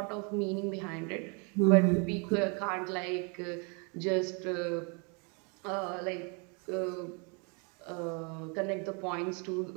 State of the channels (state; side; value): quieter; left; 34.7 dB